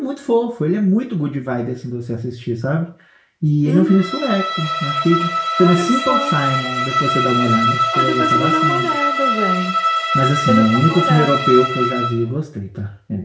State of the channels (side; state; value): both; identical; correlation 1.00